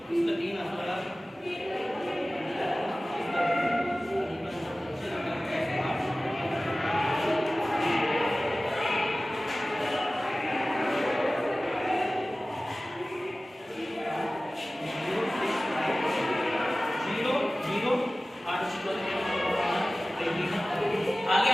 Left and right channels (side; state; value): both; normal; correlation 0.97